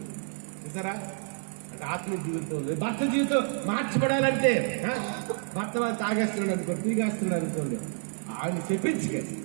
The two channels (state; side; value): silent; left; 56 dB below the other